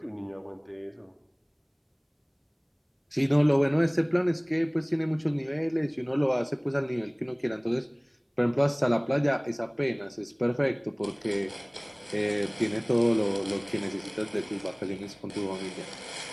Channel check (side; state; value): both; identical; correlation 1.00